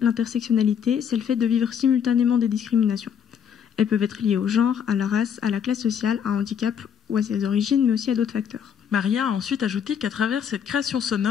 l'intersectionnalité, c'est le fait de vivre simultanément des discriminations. Elles peuvent être liées au genre, à la race, à la classe sociale, à un handicap ou à ses origines, mais aussi à d'autres facteurs. Maria a ensuite ajouté qu'à travers cette création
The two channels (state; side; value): quieter; right; 8.0 dB